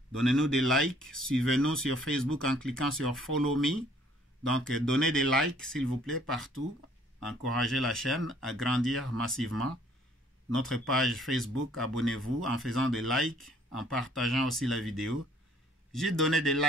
Donnez-nous des likes. Suivez-nous sur Facebook en cliquant sur Follow Me. Donc, donnez des likes, s'il vous plaît, partout. Encouragez la chaîne à grandir massivement. Notre page Facebook, abonnez-vous en faisant des likes, en partageant aussi la vidéo. J'ai donné des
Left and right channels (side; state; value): both; normal; correlation 0.60